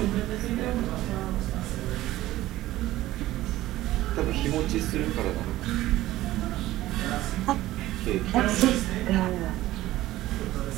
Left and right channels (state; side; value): quieter; left; 15.8 dB